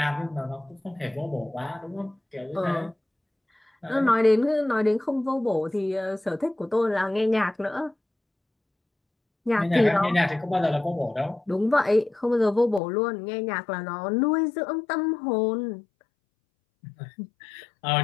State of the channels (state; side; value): drops out; right; at 12.8 s